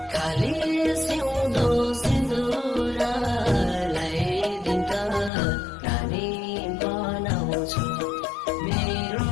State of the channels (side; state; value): right; drops out; at 5.3 s